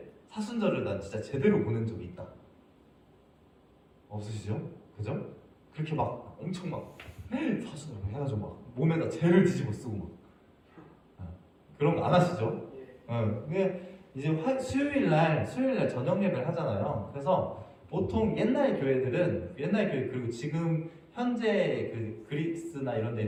사순절을 난 진짜 제대로 보낸 적이 있다. 없으시죠? 그죠? 그렇게 막 엄청 사순절 해가지고 막 몸에다 재를 뒤집어 쓰고 막 그런 거 안 하시죠? 근데 이제 수요일 날 저녁 예배를 하잖아요. 그래서 보통 옛날 교회 그리고 지금 현재 그 그리스나 이런 데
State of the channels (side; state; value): both; identical; correlation 1.00